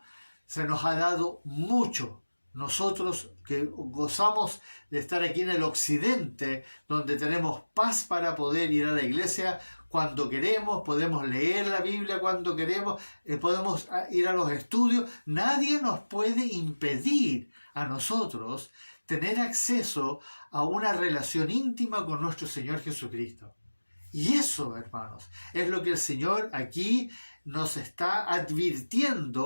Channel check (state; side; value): inverted; both; correlation -1.00